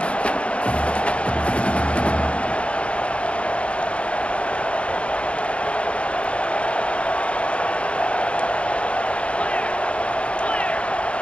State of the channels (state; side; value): late; right; 0.060 ms